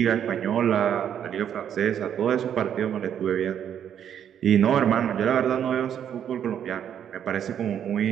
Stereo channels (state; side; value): quieter; left; 9.2 dB